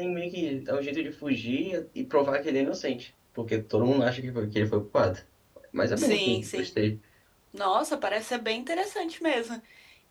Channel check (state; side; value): identical; both; correlation 1.00